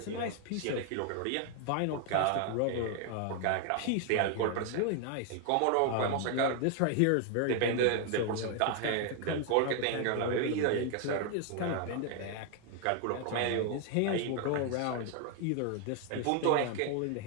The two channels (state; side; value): different; both; correlation 0.00